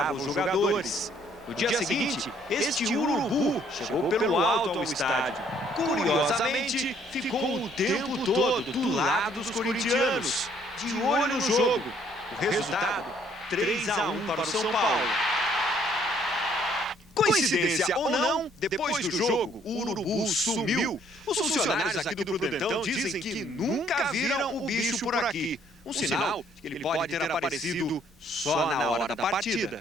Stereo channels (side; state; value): both; normal; correlation 0.64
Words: os jogadores. No dia seguinte, este urubu chegou pelo alto ao estádio. Curiosamente, ficou o tempo todo do lado dos corintianos, de olho no jogo. O resultado, 3-1 para o São Paulo. Coincidência ou não, depois do jogo, o urubu sumiu. Os funcionários aqui do Prudentão dizem que nunca viram o bicho por aqui. Um sinal que ele pode ter aparecido só na hora da